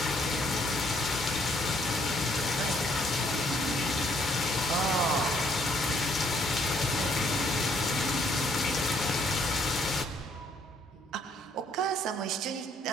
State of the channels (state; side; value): normal; both; correlation 0.67